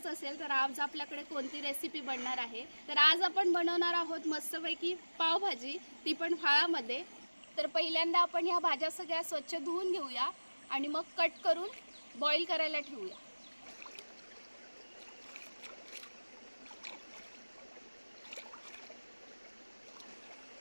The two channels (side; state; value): both; inverted; correlation -1.00